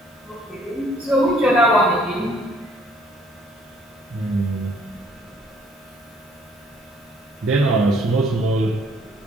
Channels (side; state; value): both; normal; correlation 0.62